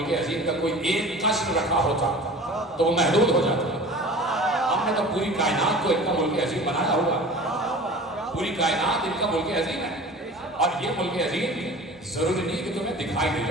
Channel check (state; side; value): normal; both; correlation 0.40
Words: عظیم کا کوئی ایک قصر رکھا ہوتا تو وہ محدود ہو جاتا۔ ہم نے تو پوری کائنات کو ان کا ملک عظیم بنایا ہوا، پوری کائنات ان کا ملک عظیم ہے، اور یہ ملک عظیم ضروری نہیں کہ تمہیں دکھائی دے